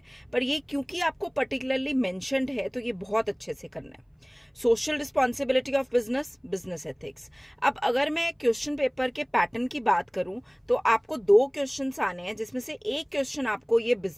पर ये क्योंकि आपको पर्टिकुलरली मेंशन्ड है तो ये बहुत अच्छे से करना है। Social responsibility of business, business ethics. अब अगर मैं क्वेश्चन पेपर के पैटर्न की बात करूं तो आपको 2 क्वेश्चंस आने हैं, जिसमें से एक क्वेश्चन आपको ये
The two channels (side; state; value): both; identical; correlation 1.00